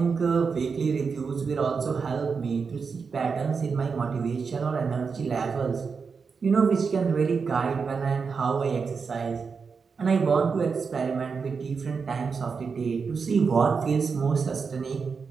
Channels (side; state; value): left; quieter; 5.4 dB